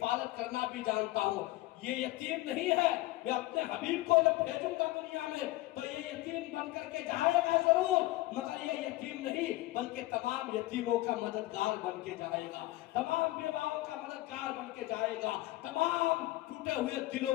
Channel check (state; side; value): quieter; right; 18.1 dB